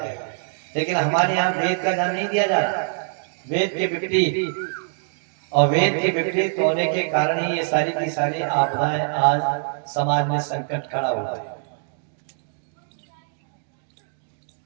लेकिन हमारे यहाँ वेद का ज्ञान नहीं दिया जा रहा। वेद के विपरीत, और वेद के विपरीत होने के कारण ही ये सारी की सारी आपदाएं आज समाज में संकट खड़ा हुआ है।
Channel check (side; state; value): left; silent; digital silence